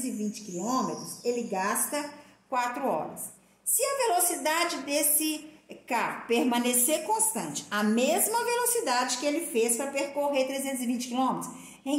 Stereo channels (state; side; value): identical; both; correlation 1.00